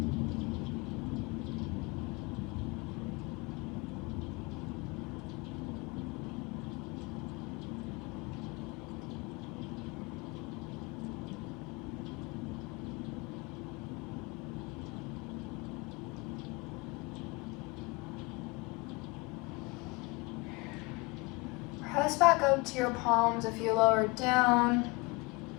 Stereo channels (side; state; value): right; quieter; 26.1 dB